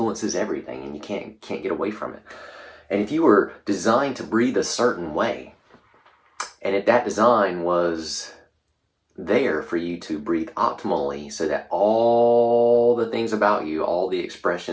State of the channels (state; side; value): identical; both; correlation 1.00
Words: everything, and you can't get away from it. And if you were designed to breathe a certain way, and if that design was there for you to breathe optimally, so that all the things about you, all the